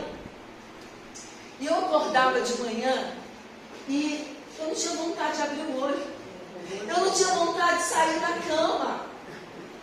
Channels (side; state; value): both; identical; correlation 1.00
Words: E eu acordava de manhã e eu não tinha vontade de abrir o olho. Eu não tinha vontade de sair da cama.